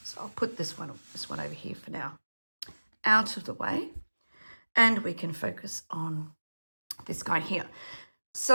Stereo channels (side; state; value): both; inverted; correlation -1.00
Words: So I'll put this one over here for now, out of the way, and we can focus on this guy here.